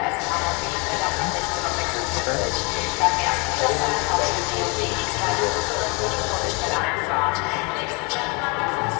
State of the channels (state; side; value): quieter; right; 30.5 dB